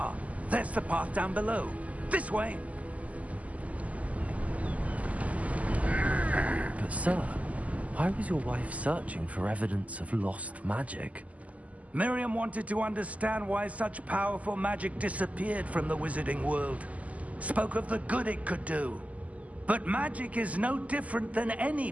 there's the path down below. This way! But sir, why was your wife searching for evidence of lost magic? Miriam wanted to understand why such powerful magic disappeared from the wizarding world. Spoke of the good it could do. But magic is no different than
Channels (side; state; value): left; late; 0.072 ms